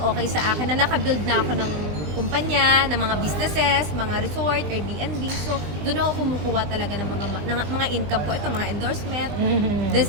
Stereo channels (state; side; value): late; left; 20 ms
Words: sa akin na nakabuild na ako ng kumpanya, ng mga businesses, mga resort, Airbnb. So, doon ako kumukuha talaga ng mga income ko. Ito, mga endorsement. Mhm. This